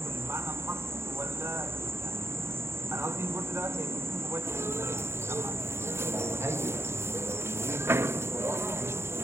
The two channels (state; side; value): late; left; 0.12 ms